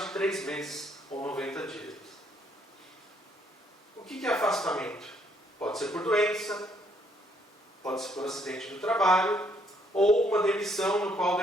de 3 meses ou 90 dias. O que é afastamento? Pode ser por doença, pode ser por acidente do trabalho ou uma demissão no qual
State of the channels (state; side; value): normal; both; correlation 0.69